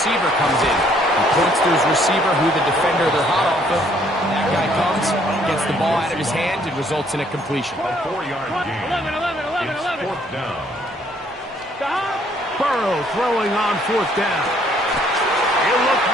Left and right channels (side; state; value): both; normal; correlation 0.65